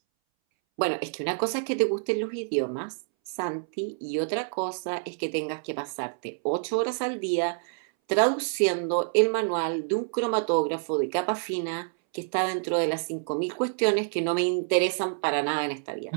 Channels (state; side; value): silent; left; 60 dB below the other